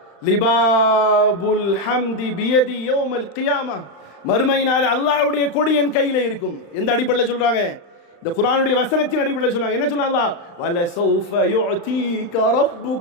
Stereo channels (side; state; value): right; late; 35 ms